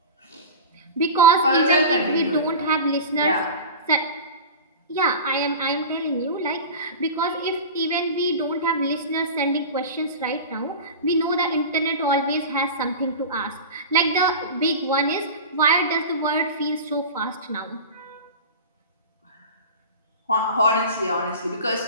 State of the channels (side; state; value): both; inverted; correlation -0.31